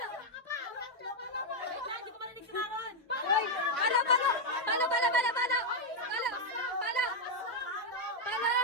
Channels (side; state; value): both; normal; correlation 0.01